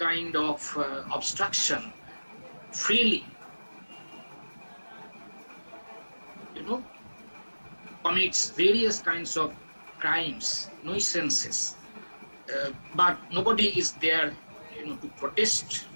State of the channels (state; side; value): inverted; both; correlation -1.00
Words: of obstruction, freely, commits various kinds of crimes, nuisances, but nobody is there, to protest